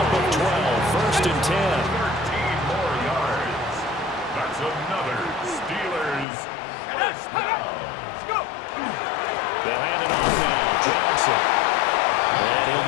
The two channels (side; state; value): right; drops out; at 6.2 s